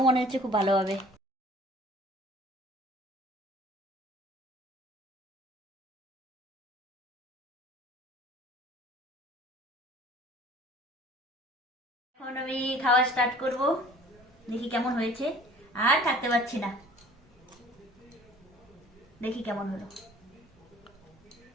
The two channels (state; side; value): normal; both; correlation 0.50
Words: মনে হচ্ছে খুব ভালো হবে। এখন আমি খাওয়া স্টার্ট করব, দেখি কেমন হয়েছে। আর থাকতে পারছি না, দেখি কেমন হলো।